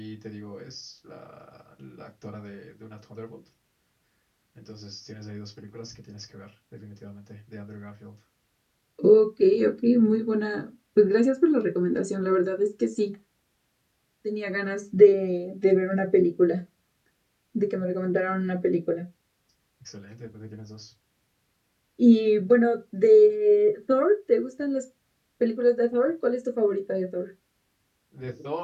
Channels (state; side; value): identical; both; correlation 1.00